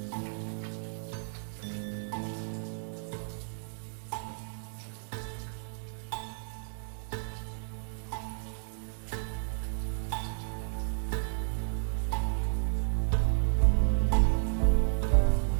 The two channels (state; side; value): silent; left; digital silence